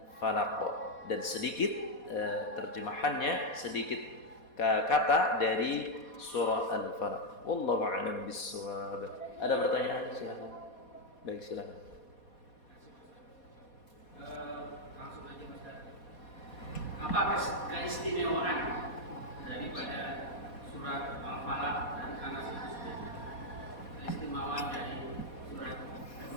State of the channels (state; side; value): late; right; 4.2 ms